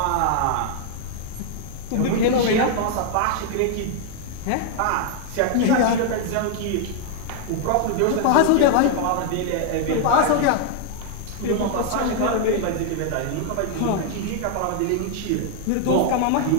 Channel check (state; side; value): different; both; correlation 0.00